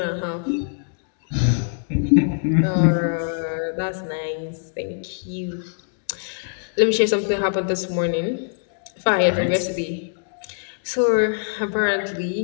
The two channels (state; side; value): silent; right; digital silence